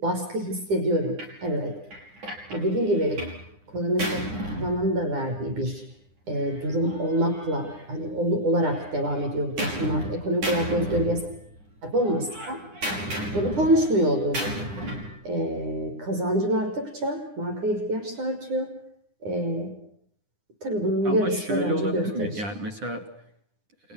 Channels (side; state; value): left; late; 9.8 ms